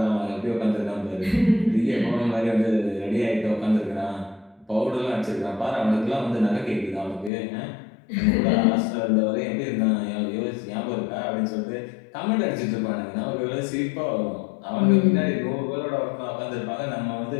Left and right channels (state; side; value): drops out; right; at 7.3 s